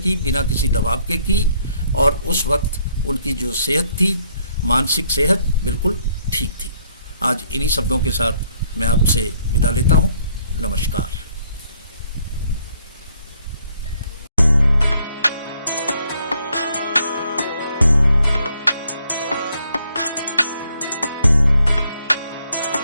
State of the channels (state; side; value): inverted; both; correlation -0.68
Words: बिना किसी दबाव के की, और उस वक्त उनकी जो सेहत थी, मानसिक सेहत बिल्कुल ठीक थी। आज इन्हीं शब्दों के साथ मैं आपसे विदा लेता हूँ। नमस्कार।